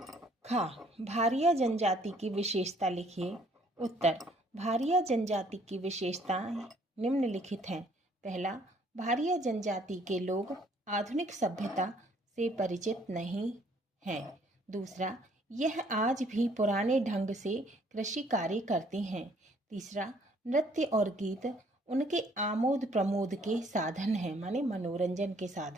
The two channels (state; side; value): normal; both; correlation 0.62